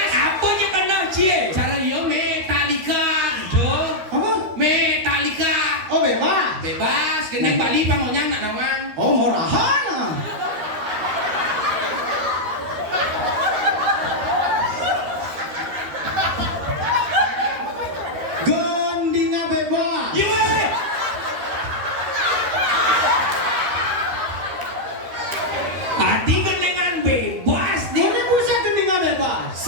Apa je kena cie? Cara yo Metallica gitu. apa Metallica. oh bebas Bebas gendeng Bali pangonya nak nawang. oh murahan gendinga bebas Ye. Hati genengan bebas di. ini bisa gendinga bebas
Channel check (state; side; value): late; left; 13 ms